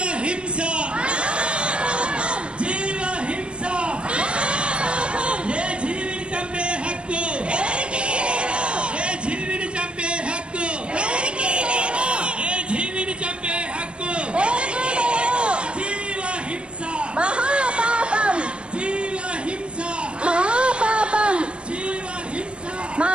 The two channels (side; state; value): left; late; 0.057 ms